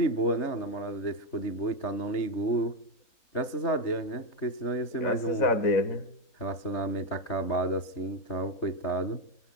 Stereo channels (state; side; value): late; right; 3.4 ms